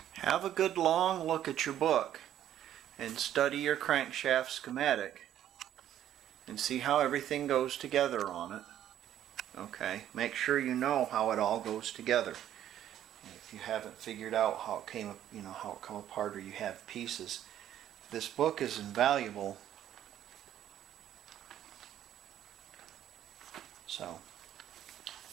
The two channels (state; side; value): quieter; left; 11.3 dB